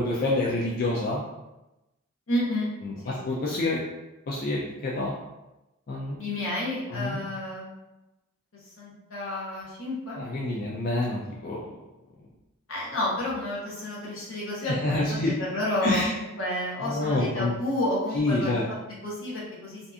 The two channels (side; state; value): both; normal; correlation 0.39